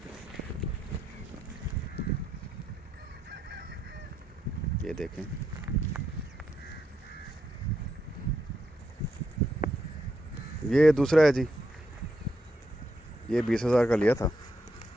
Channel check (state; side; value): normal; both; correlation 0.80